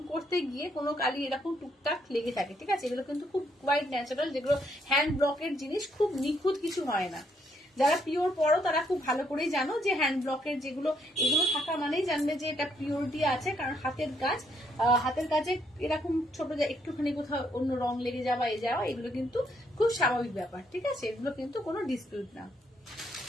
করতে গিয়ে কোনো কালি এরকম টুকটাক লেগে থাকে, ঠিক আছে, এগুলো কিন্তু খুব কোয়াইট ন্যাচারাল, যেগুলো হ্যান্ড ব্লকের জিনিস, খুব নিখুঁত কিছু হয় না। যারা পিওর পড়ো তারা খুব ভালো করেই জানো যে হ্যান্ড ব্লকের যেগুলো, এগুলো থাকা মানেই জানবে যে এটা পিওরিটি আছে, কারণ হাতের কাজ, হাতের কাজে এরকম ছোট একটুখানি কোথাও অন্য রং লেগে যাওয়া এ যাওয়া, এগুলো কিন্তু খুব স্বাভাবিক ব্যাপার, ঠিক আছে, এগুলো কিন্তু কোনো ডিসপিউট না।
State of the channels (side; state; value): both; normal; correlation 0.72